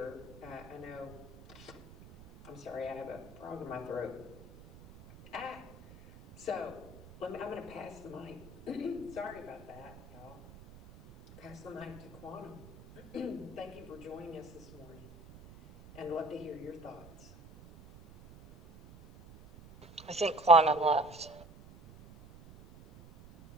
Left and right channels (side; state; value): right; noise; rumble, 19 dB below the sound